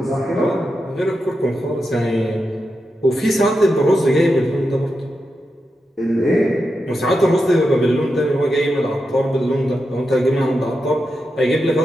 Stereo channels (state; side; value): normal; both; correlation 0.88